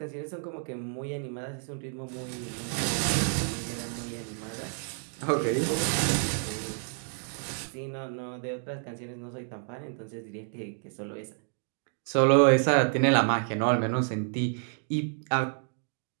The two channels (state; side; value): silent; left; 58 dB below the other